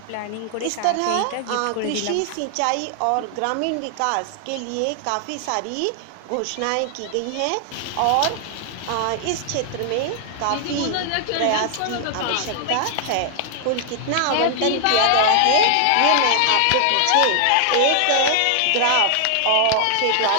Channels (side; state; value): both; different; correlation 0.00